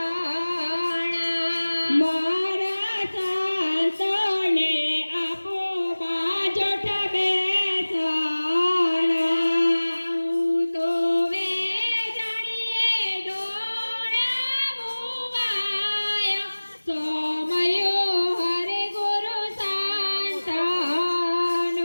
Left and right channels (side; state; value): both; inverted; correlation -1.00